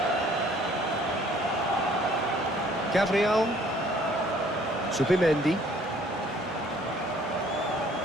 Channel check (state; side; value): normal; both; correlation 0.58